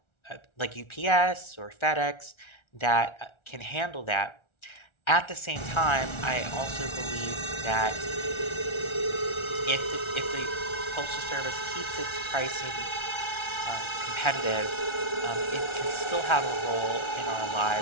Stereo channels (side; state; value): right; late; 1.4 ms